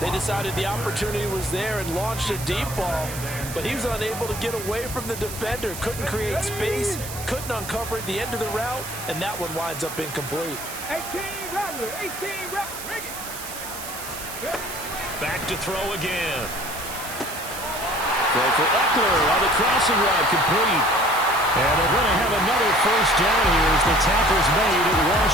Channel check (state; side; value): noise; right; hiss, 10 dB below the sound